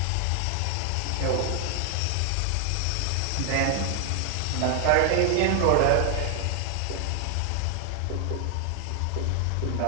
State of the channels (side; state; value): both; different; correlation 0.00